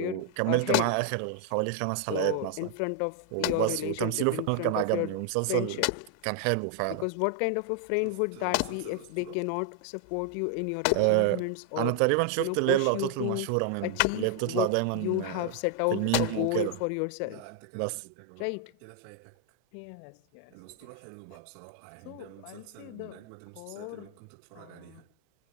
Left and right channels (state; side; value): different; both; correlation 0.00